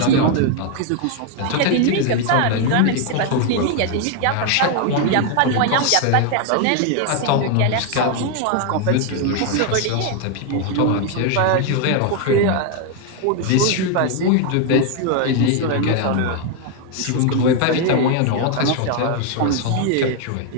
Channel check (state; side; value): different; both; correlation 0.01